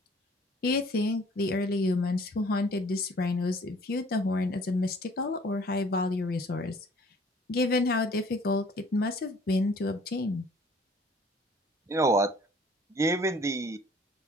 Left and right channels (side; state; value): both; normal; correlation 0.55